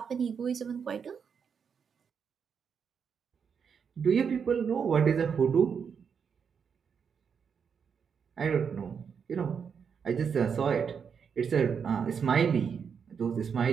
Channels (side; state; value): left; quieter; 6.7 dB